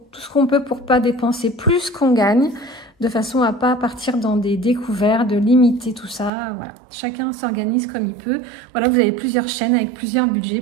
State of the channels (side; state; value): left; drops out; at 6.3 s